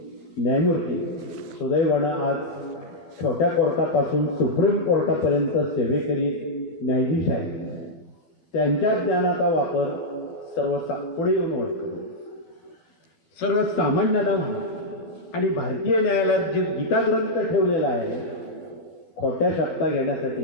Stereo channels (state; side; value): late; right; 12 ms